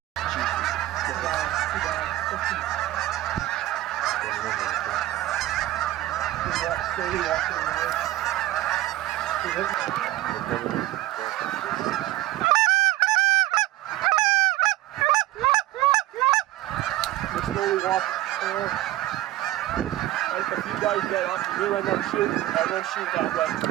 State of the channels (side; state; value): left; quieter; 15.9 dB